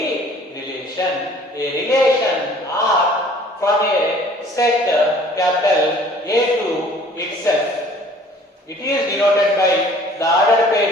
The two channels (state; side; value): normal; both; correlation 0.52